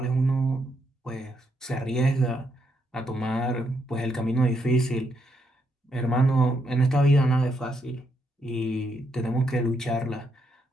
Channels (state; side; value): normal; both; correlation 0.77